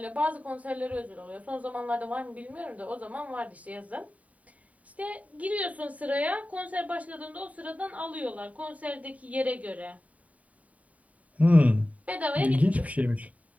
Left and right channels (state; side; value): late; left; 0.069 ms